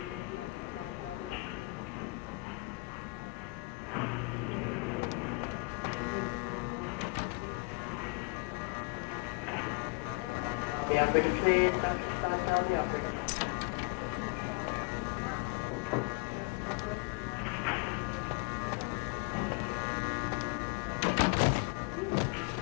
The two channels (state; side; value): quieter; right; 28.5 dB